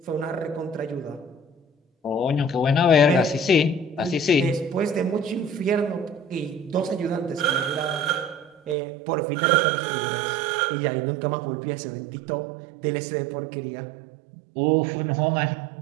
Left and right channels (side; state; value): left; drops out; at 8.8 s